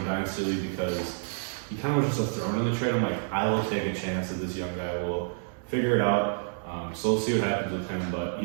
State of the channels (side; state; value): left; silent; digital silence